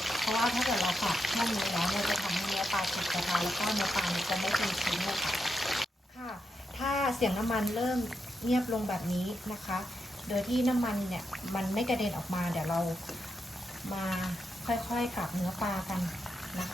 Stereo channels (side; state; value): both; normal; correlation 0.85